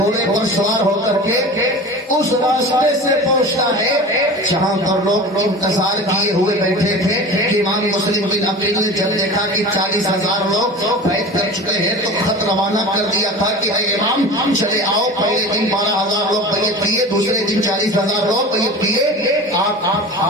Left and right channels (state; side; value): normal; both; correlation 0.35